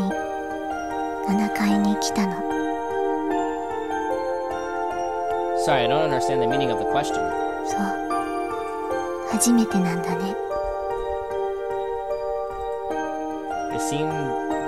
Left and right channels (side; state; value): both; identical; correlation 1.00